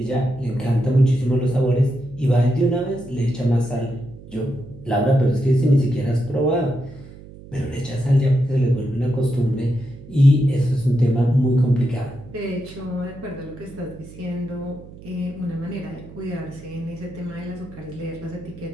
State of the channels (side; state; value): right; noise; hum, 18 dB below the sound